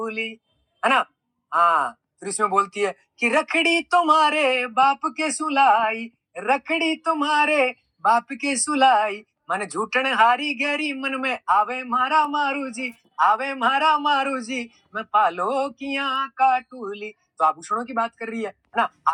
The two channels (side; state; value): both; identical; correlation 1.00